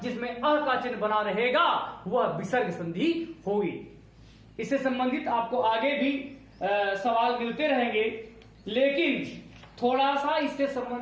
जिसमें अ का चिन्ह बना रहेगा, वह विसर्ग संधि होगी। इससे संबंधित आपको आगे भी सवाल मिलते रहेंगे, लेकिन थोड़ा सा इससे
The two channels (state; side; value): identical; both; correlation 1.00